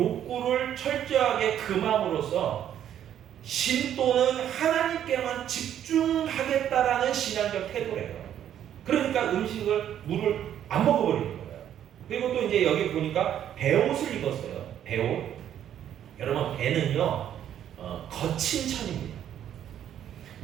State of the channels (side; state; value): left; quieter; 10.3 dB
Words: 철저하게 금함으로써 신도는 하나님께만 집중하겠다라는 신앙적 태도래요. 그러니까 음식을, 물을 안 먹어버리는 거예요. 그리고 또 이제 여기 보니까 베옷을 입었어요. 베옷. 여러분, 배는요, 거친 천입니다.